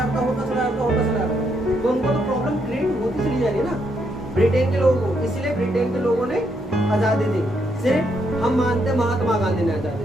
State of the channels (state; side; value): normal; both; correlation 0.76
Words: तो उनको तो प्रॉब्लम क्रिएट होती चली जा रही है ना ब्रिटेन के लोगों को। इसलिए ब्रिटेन के लोगों ने आजादी दी। सिर्फ हम मानते हैं महात्मा गांधी ने आजादी